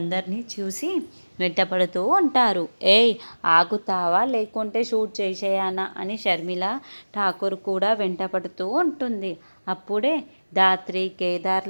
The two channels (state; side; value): inverted; both; correlation -1.00